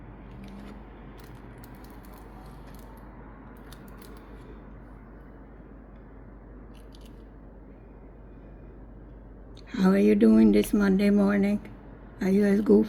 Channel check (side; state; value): both; identical; correlation 1.00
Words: How are you doing this Monday morning? Are you as